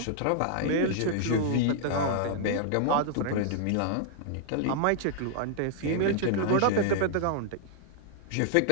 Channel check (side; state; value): both; different; correlation -0.01